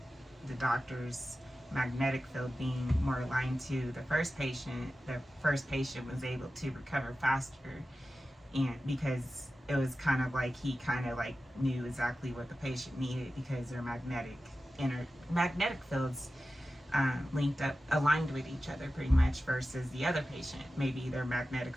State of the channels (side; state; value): both; normal; correlation 0.93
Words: the doctor's magnetic field being more aligned to the first patient was able to recover faster, and because it was kind of like he kind of like knew exactly what the patient needed because their magnetic fields linked up, aligned with each other pretty much, versus the other patient, maybe their magnetic